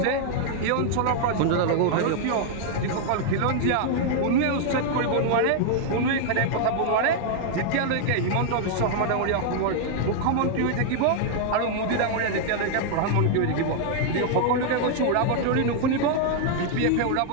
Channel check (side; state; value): both; different; correlation -0.01